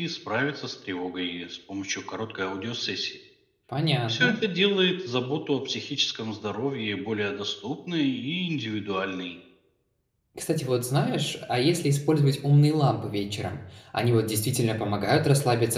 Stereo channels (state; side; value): identical; both; correlation 1.00